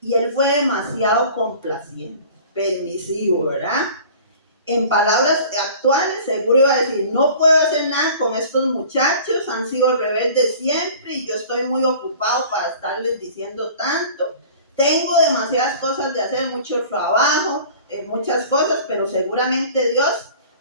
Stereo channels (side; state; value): both; inverted; correlation -0.45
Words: él fue demasiado complaciente, permisivo, ¿verdad? En palabras actuales, seguro iba a decir, no puedo hacer nada con estos muchachos, han sido rebeldes siempre y yo estoy muy ocupado para estarles diciendo tanto. Tengo demasiadas cosas de hacer, mucho trabajo, muchas cosas, pero seguramente Dios